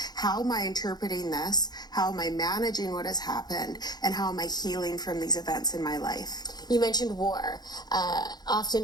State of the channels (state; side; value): late; right; 0.20 ms